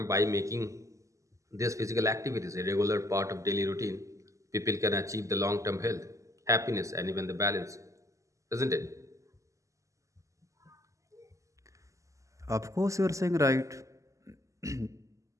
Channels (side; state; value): left; late; 0.16 ms